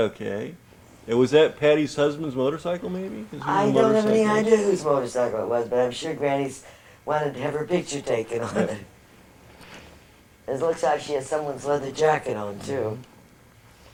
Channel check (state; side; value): identical; both; correlation 1.00